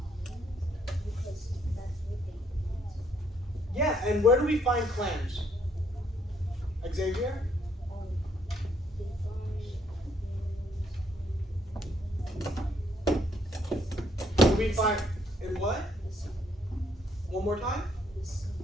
because that's what they eat. Yeah, and where do we find clams? Xavier? They Do we find in what? the sea. One more time? The sea.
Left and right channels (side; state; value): both; normal; correlation 0.69